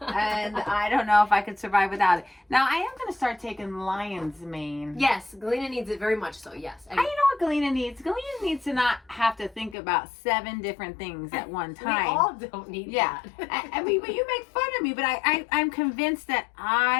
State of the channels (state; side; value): drops out; right; at 9.8 s